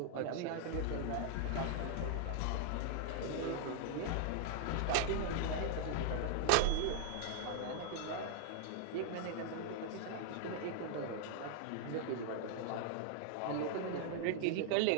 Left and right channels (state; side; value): different; both; correlation 0.00